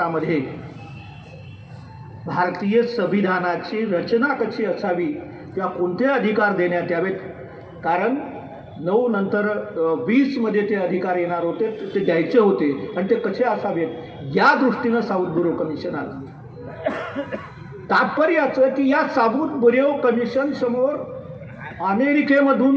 भारतीय संविधानाची रचना कशी असावी किंवा कोणते अधिकार देण्यात यावेत, कारण 9 नंतर 20 मध्ये ते अधिकार येणार होते, ते द्यायचे होते आणि ते कसे असावेत या दृष्टीनं साऊथ बुरो कमिशन आलं. तात्पर्य असं की या साऊथ बुरो कमिशन समोर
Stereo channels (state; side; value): identical; both; correlation 1.00